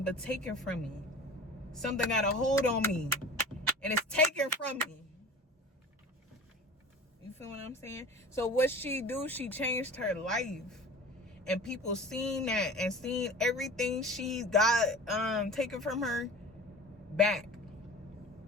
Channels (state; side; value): normal; both; correlation 0.39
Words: taking from me. Something got a hold on me and it's taken from me. You feel what I'm saying? So what she do, she changed her life. And people seen that and seen everything she got taken from her back.